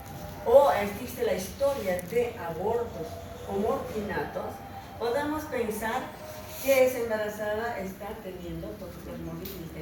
o existe la historia de abortos o morfinatos, podemos pensar que esa embarazada está teniendo toxoplasmosis y está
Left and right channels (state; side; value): identical; both; correlation 1.00